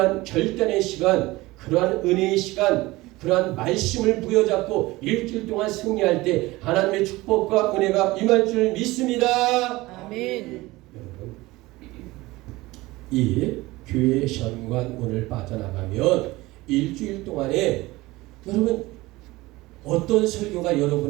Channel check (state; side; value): quieter; left; 20.0 dB